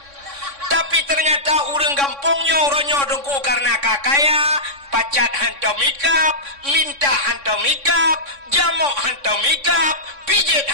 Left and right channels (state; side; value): late; left; 3.6 ms